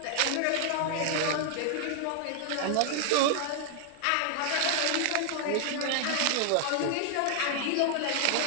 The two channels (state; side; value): different; both; correlation 0.00